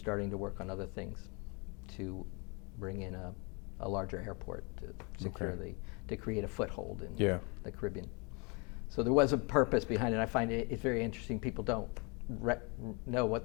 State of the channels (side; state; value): right; quieter; 31.4 dB